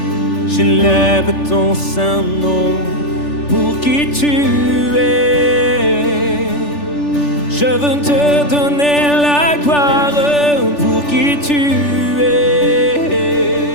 J'élève ton saint nom, pour qui tu es. Je veux te donner la gloire, pour qui tu es.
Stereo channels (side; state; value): right; late; 3.4 ms